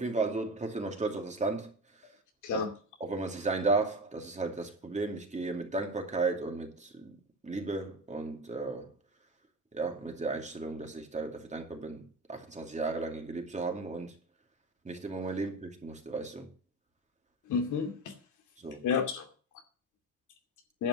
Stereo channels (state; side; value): normal; both; correlation 0.24